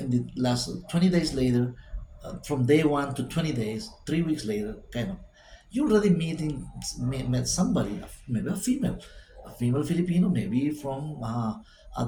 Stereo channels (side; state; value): both; identical; correlation 1.00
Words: the last 20 days later, from day one to 20 days, 3 weeks later, kind of, you already met somebody, maybe a female Filipino, maybe from at